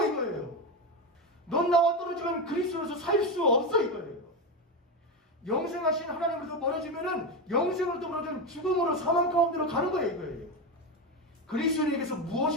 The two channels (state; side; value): normal; both; correlation 0.14